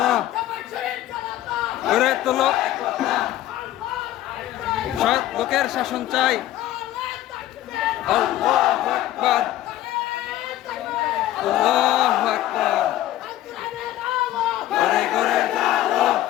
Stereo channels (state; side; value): quieter; right; 14.0 dB